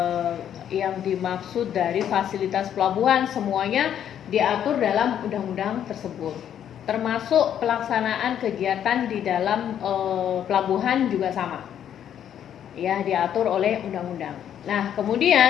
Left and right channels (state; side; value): quieter; right; 9.7 dB